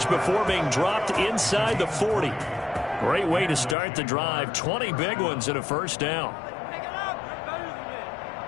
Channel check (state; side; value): drops out; right; at 3.8 s